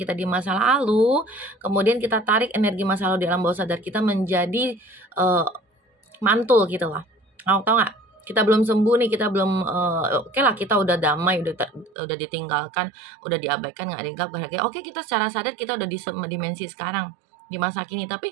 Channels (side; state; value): left; drops out; at 11.9 s